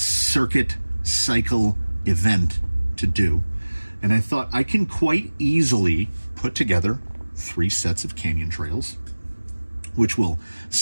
cycle event to do. And I thought I can quite easily put together 3 sets of canyon trails, which will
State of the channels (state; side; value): inverted; both; correlation -1.00